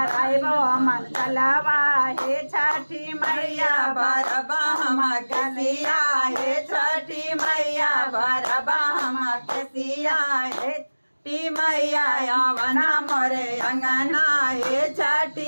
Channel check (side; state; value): both; inverted; correlation -1.00